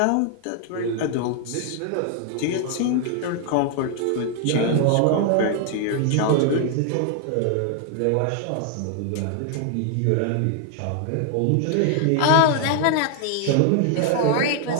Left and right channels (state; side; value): different; both; correlation 0.00